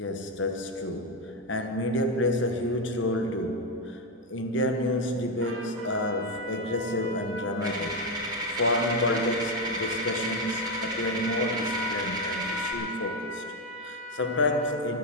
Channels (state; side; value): normal; both; correlation 0.07